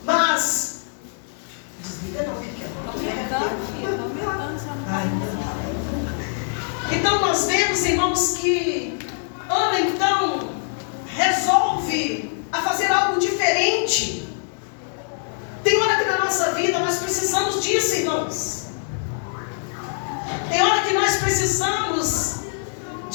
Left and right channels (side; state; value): right; silent; digital silence